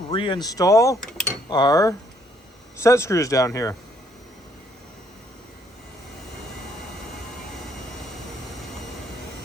our set screws down here.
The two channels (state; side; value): normal; both; correlation 0.67